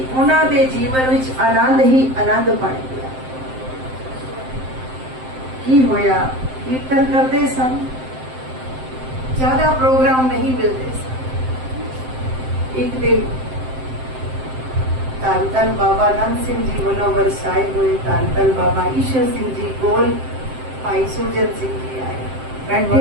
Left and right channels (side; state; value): left; late; 7.7 ms